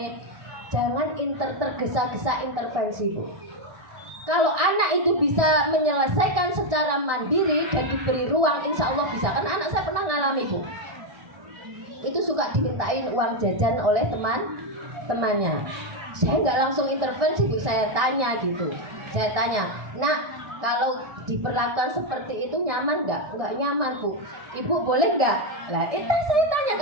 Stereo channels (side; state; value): left; late; 1.6 ms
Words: jangan tergesa-gesa intervensi Bu. Kalau anak itu bisa menyelesaikan secara mandiri dan diberi ruang, insya Allah bisa. Kan anak saya pernah ngalami Bu, itu suka dimintain uang jajan oleh temannya. Saya nggak langsung intervensi Bu, saya tanya gitu. Saya tanya, nak kalau diperlakukan seperti itu nyaman nggak? Nggak nyaman Bu. Ibu boleh nggak? Lah itu saya tanya